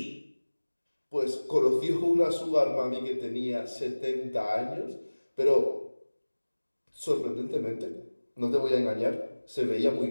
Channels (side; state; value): both; inverted; correlation -1.00